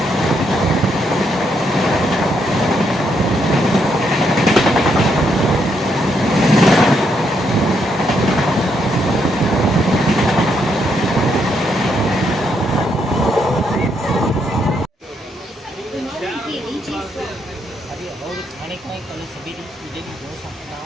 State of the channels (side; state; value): both; normal; correlation 0.76